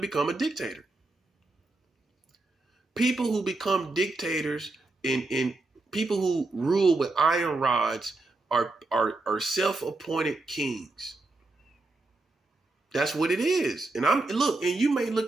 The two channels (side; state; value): left; quieter; 3.2 dB